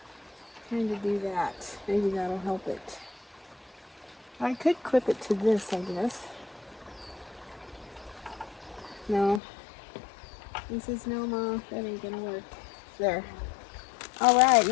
kind of do that. Maybe that'll help it. I could clip it to this, I guess. No. This is no, Ma. That ain't going to work. There. Alright,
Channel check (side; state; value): right; drops out; at 9.4 s